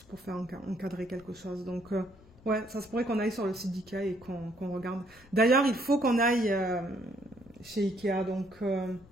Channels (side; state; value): left; noise; rumble, 26 dB below the sound